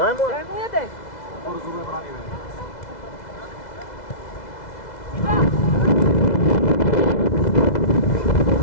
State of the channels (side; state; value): right; late; 2.0 ms